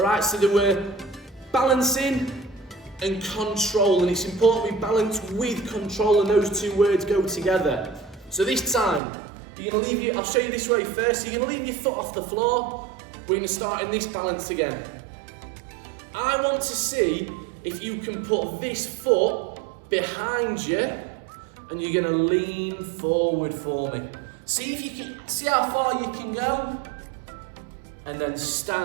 so they were balancing and control, and it's important we balance with control, and those 2 words go together. So this time, I'll show you this way first. So you're going to leave your foot off the floor. We're going to start in this balance again. I want to see if you can put this foot behind you, and you're going to lean forward for me. See if you can, see how far you can go, and then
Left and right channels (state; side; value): drops out; left; at 9.0 s